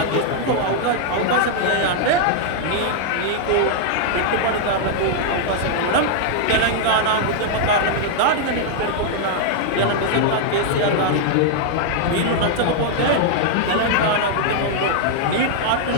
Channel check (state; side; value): different; both; correlation -0.01